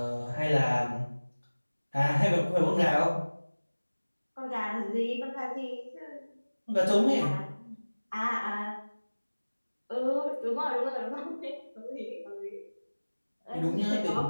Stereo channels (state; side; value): inverted; both; correlation -1.00